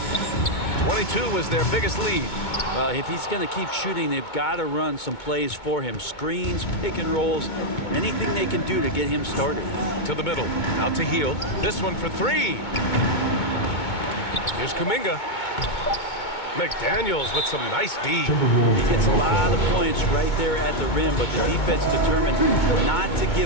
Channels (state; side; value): late; right; 2.2 ms